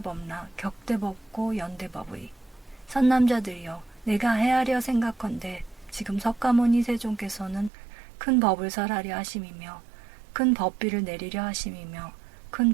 격대법고 연대법의 선남자들이여, 내가 헤아려 생각컨대 지금 석가모니 세존께서는 큰 법을 설하려 하심이며 큰 법비를 내리려 하심이며 큰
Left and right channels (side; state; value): left; drops out; at 7.7 s